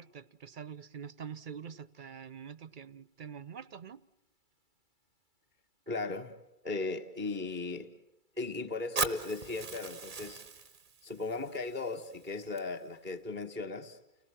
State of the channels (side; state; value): left; late; 2.3 ms